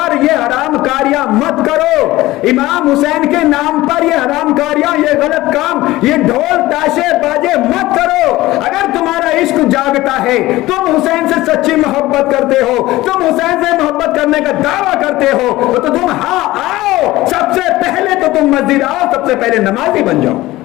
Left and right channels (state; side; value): quieter; right; 17.7 dB